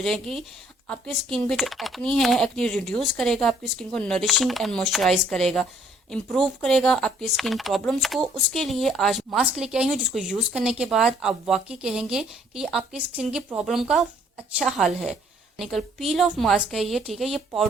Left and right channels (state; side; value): normal; both; correlation 0.62